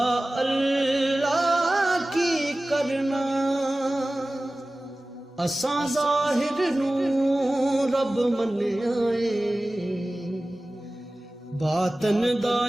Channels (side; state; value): both; normal; correlation 0.97